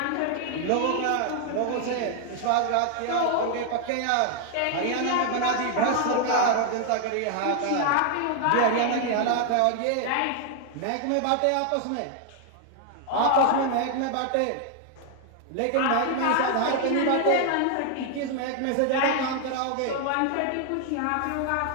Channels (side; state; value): both; different; correlation 0.00